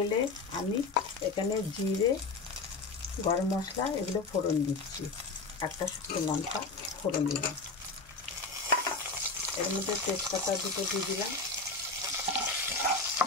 আমি এখানে জিরে, গরম মশলা এগুলো ফোড়ন দিচ্ছি। একটা শুকনো লঙ্কা ফোড়ন দিলাম, এর মধ্যে তেজপাতা দুটো দিয়ে দিলাম।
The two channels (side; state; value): right; quieter; 3.8 dB